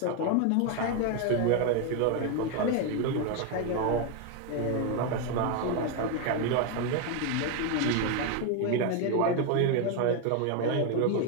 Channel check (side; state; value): both; different; correlation 0.01